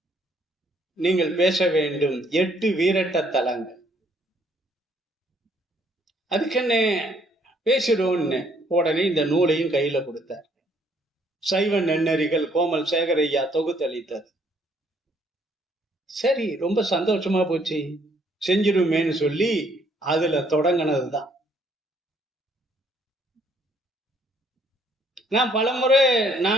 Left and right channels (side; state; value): both; normal; correlation 0.65